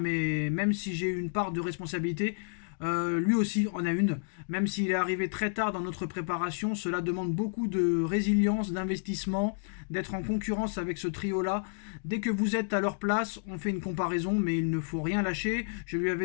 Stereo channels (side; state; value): right; silent; digital silence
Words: même si j'ai eu une part de responsabilité, lui aussi en a une. Même s'il est arrivé très tard dans notre préparation, cela demande beaucoup de résilience, d'investissement, d'être en concurrence avec ce trio-là. Dès que vous êtes à leur place, on fait une comparaison, mais il ne faut rien lâcher. Je lui